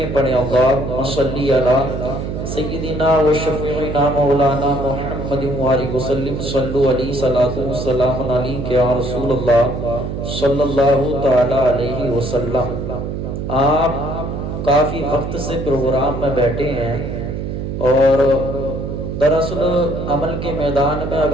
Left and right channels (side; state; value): right; noise; hum, 5 dB below the sound